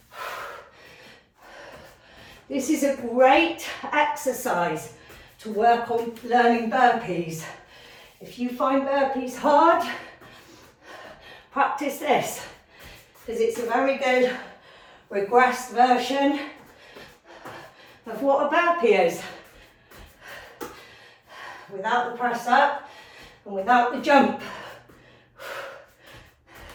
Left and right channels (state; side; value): identical; both; correlation 1.00